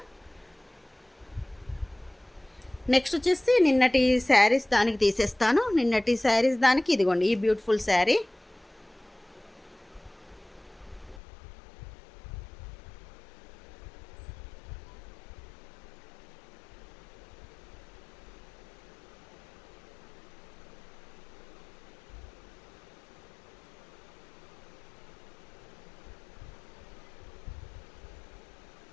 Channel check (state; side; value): drops out; right; at 11.2 s